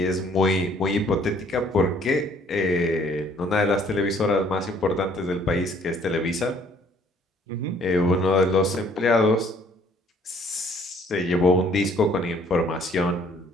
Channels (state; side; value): normal; both; correlation 0.60